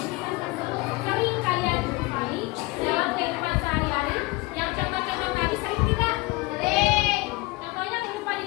tersebut sering kalian jumpai dalam kehidupan sehari-hari? Yang contoh-contoh tadi sering tidak? Sering. Contohnya kehidupan di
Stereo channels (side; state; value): right; quieter; 22.8 dB